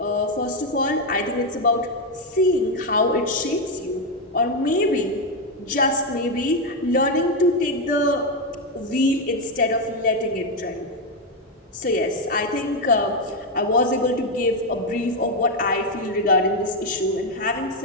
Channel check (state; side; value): normal; both; correlation 0.06